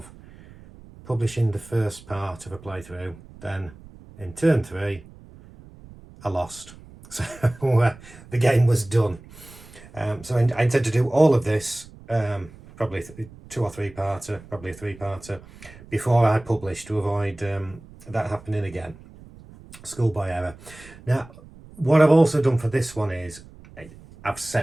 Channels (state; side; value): noise; right; rumble, 20 dB below the sound